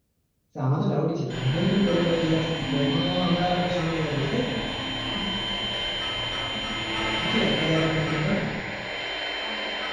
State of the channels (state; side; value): identical; both; correlation 1.00